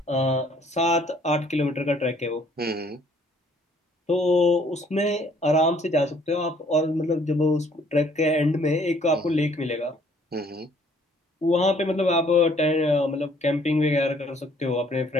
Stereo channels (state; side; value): normal; both; correlation 0.61